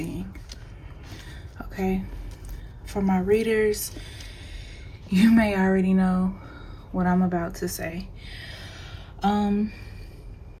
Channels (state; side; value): identical; both; correlation 1.00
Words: Okay? For my readers, you may already know what I'm about to say.